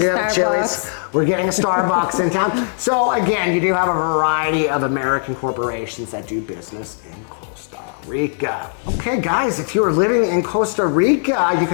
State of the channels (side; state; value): right; silent; 67 dB below the other